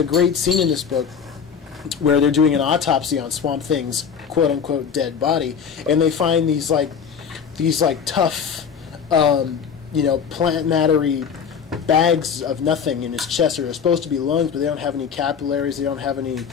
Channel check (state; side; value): quieter; right; 6.9 dB